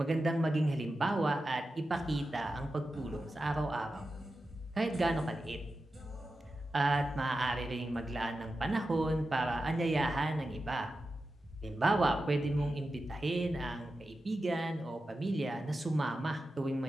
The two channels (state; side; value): normal; both; correlation 0.92